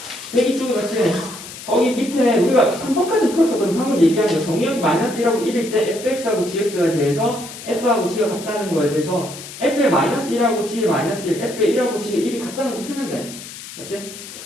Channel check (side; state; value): left; noise; hiss, 13 dB below the sound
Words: 맞지? 거기 밑에 우리가 3번까지 풀었었거든 방금 얘기한 거 정의역이 마이너스 1하고 1일 때 fx하고 gx에 대해서 f하고 g가 같다는 거에 대해서 f의 마이너스 1하고 g의 마이너스 1 f의 1하고 g의 1이 같다는 거 풀면 돼 맞지?